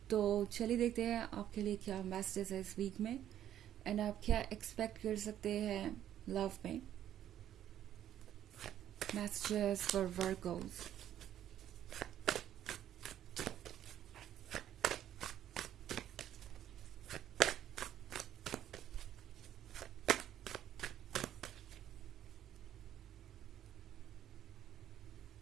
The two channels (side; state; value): left; quieter; 11.2 dB